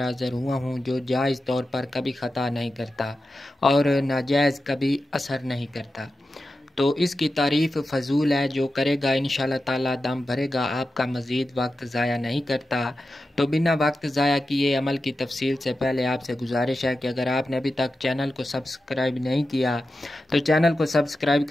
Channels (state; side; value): normal; both; correlation 0.91